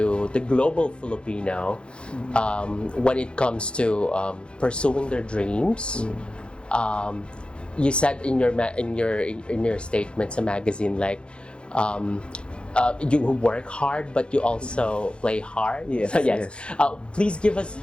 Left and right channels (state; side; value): late; right; 0.056 ms